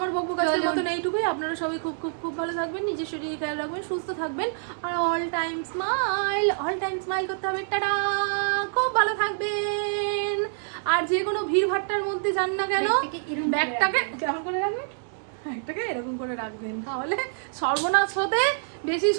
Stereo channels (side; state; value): left; silent; digital silence